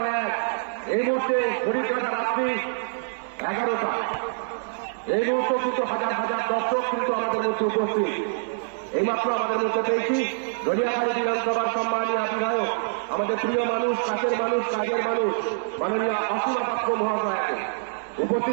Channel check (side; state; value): left; silent; 61 dB below the other